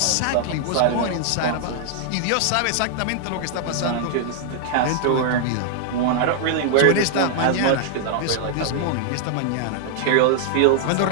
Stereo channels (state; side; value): different; both; correlation 0.00